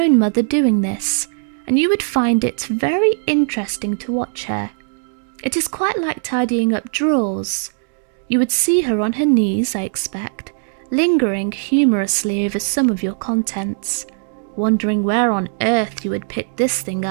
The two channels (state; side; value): silent; left; digital silence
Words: mother doing this, and you would find it very interesting to watch her. It is quite like tidying up drawers. You would see her on her knees, I expect, lingering humorously over some of your contents, wondering where on earth you had picked this thing